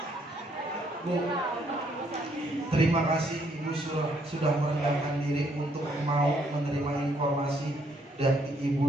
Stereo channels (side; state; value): both; normal; correlation 0.70